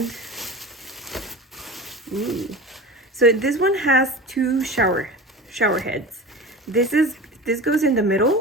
ooh. So this one has two shower heads. This goes in the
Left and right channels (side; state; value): both; normal; correlation 0.32